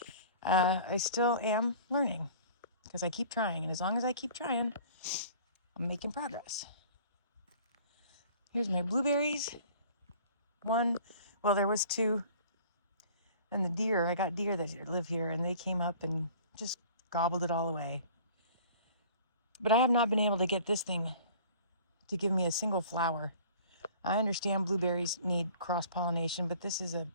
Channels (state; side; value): inverted; both; correlation -0.47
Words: I still am learning because I keep trying. And as long as I keep trying, I'm making progress. Here's my blueberries. Well, there was 2. And the deer, I got deer that live here, and they came up and just gobbled it all away. But I have not been able to get this thing to give me a single flower. I understand blueberries need cross-pollination, but this is a